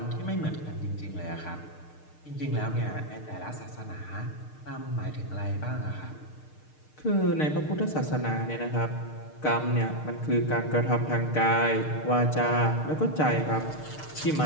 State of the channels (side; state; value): right; late; 6.6 ms